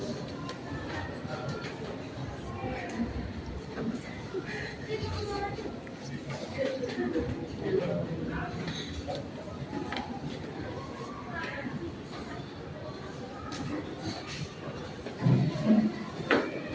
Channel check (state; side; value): identical; both; correlation 1.00